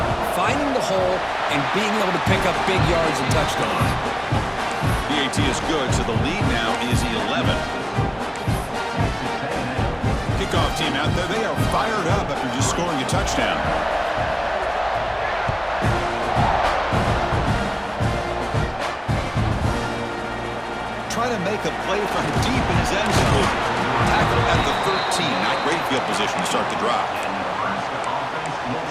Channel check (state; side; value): identical; both; correlation 1.00